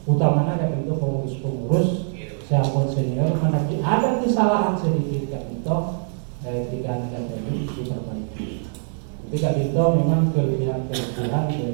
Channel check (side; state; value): left; silent; digital silence